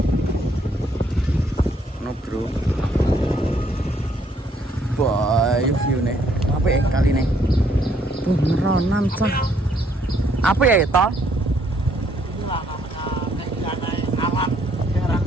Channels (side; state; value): both; normal; correlation 0.68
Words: No, Bro. Boy, view nih. Apa ya kali nih? Beneran cah. Apa ya itu? Itulah namanya keindahan alam daerah